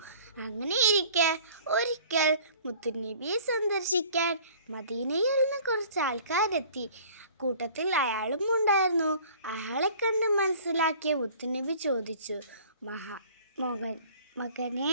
അങ്ങനെയിരിക്കെ ഒരിക്കൽ മുത്തുനബിയെ സന്ദർശിക്കാൻ മദീനയിൽ നിന്ന് കുറച്ച് ആൾക്കാരെത്തി. കൂട്ടത്തിൽ അയാളും ഉണ്ടായിരുന്നു. അയാളെ കണ്ട് മനസ്സിലാക്കിയ മുത്തുനബി ചോദിച്ചു, മകനെ,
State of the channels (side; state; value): both; inverted; correlation -0.49